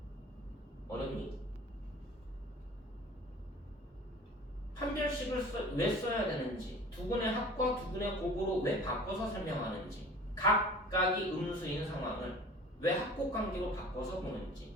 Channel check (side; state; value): both; normal; correlation 0.44